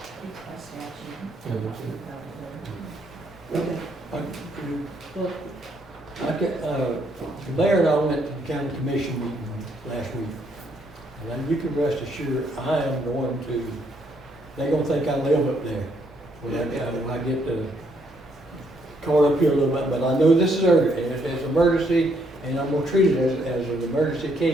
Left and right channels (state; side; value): normal; both; correlation 0.71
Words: The mayor and I went to the county commission meeting last week. And you can rest assured, I am going to, they're gonna think I live up there. When I get caught up here a little bit, but I know this is urgent, and it's an emergency, and I'm gonna treat it as an emergency